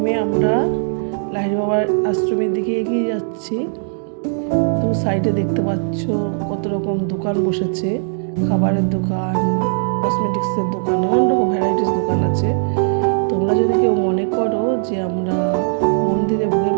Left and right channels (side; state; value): left; silent; digital silence